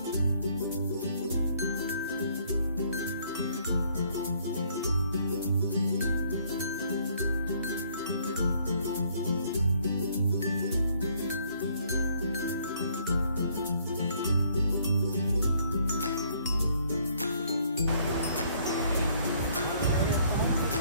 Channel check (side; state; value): both; inverted; correlation -0.65